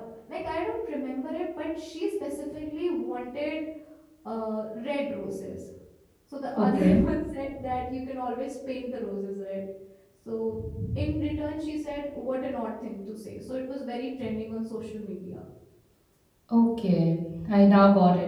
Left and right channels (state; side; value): identical; both; correlation 1.00